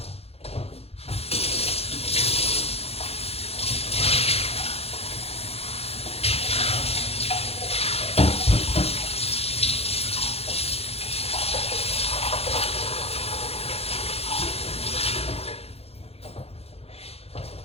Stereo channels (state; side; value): late; right; 0.29 ms